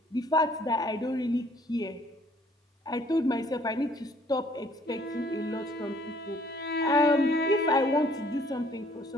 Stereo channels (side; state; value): both; normal; correlation 0.60